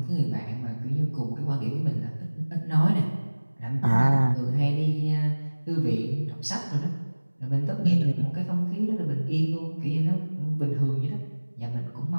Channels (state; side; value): inverted; both; correlation -1.00